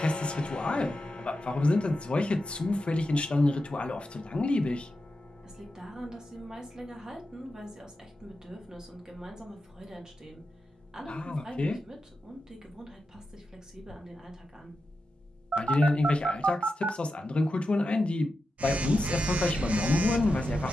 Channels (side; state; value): both; normal; correlation 0.89